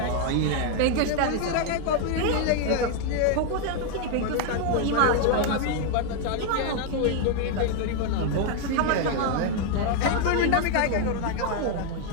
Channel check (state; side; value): different; both; correlation 0.01